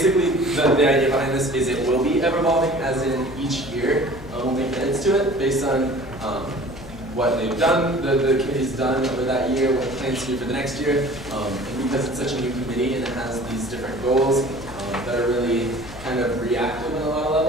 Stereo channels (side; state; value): left; noise; hum, 16 dB below the sound